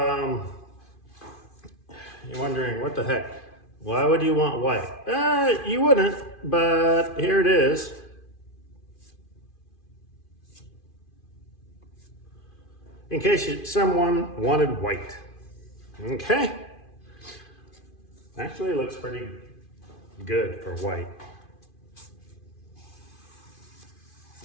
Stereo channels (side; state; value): right; late; 2.5 ms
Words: you're wondering, what the heck? Why would you want white? You wouldn't, but here it is. In case someone wanted white. Okay. Actually, it looks pretty good for white.